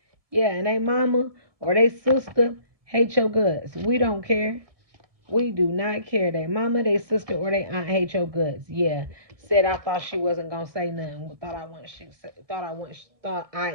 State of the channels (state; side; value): late; left; 1.7 ms